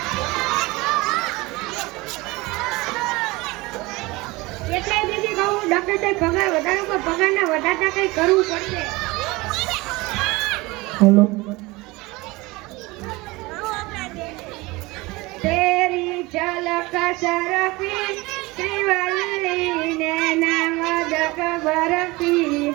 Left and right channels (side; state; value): left; quieter; 22.4 dB